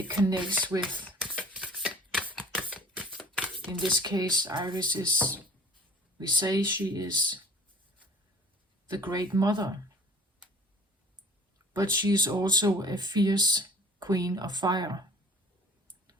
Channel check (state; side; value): normal; both; correlation 0.48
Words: connects with, in this case, Iris is, we say she is the Great Mother, but she is also a fierce queen of fire.